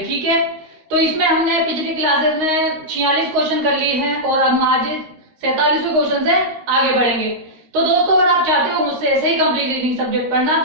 ठीक है, तो इसमें हमने पिछली क्लासेस में 46 क्वेश्चन कर लिए हैं और हम आज 47वें क्वेश्चन से आगे बढ़ेंगे। तो दोस्तों अगर आप चाहते हो मुझसे ऐसे ही कंप्लीट रीडिंग सब्जेक्ट पढ़ना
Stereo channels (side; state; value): left; late; 13 ms